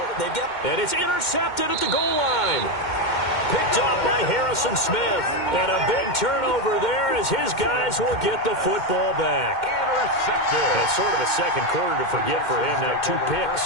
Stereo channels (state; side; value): late; right; 2.1 ms